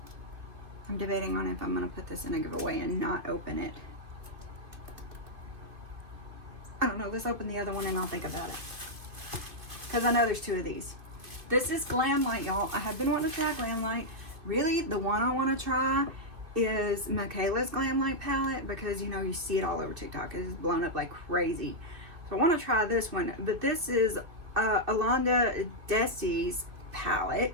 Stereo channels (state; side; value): late; left; 2.5 ms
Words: I'm debating on if I'm going to put this in a giveaway and not open it. I don't know. Let's open the other one and I'll think about it. because I know there's 2 of these. This is Glamlite, y'all. I have been wanting to try Glamlite. Really, the one I want to try is Michaela's Glamlight Palette, because, you know, you see it all over TikTok. It's blown up like crazy. So I want to try this one. But this is alondradessy's